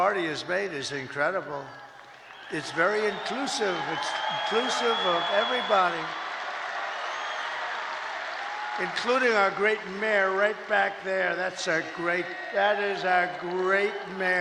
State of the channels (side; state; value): both; identical; correlation 1.00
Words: has made is incredible. It's very inclusive. It's inclusive of everybody, including our great mayor right back there. That is our great